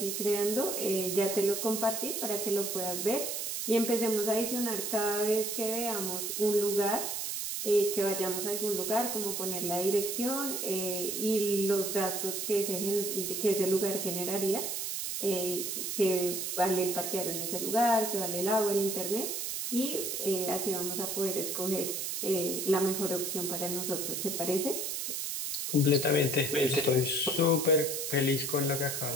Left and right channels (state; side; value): noise; right; hiss, 3 dB below the sound